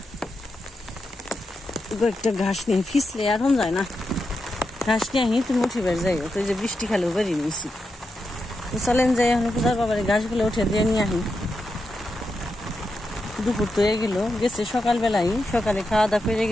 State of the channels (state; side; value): normal; both; correlation 0.87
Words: কয়েকটা ঘাস নিয়ে, ফিসলে আর হন যায় না, ঘাস নিয়ে আহি তুমি উঠিবার যাইও। তো এই যে বৃষ্টি খালেও বেরিয়ে নিয়েছি, তো চলেন যাই এখন পূজার বাবার ঘাসগুলো উঠে দিয়ে নিয়ে আহি। দুপুর তো হয়ে গেল, গেছে সকালবেলায়, সকালে খাওয়া দাওয়া করে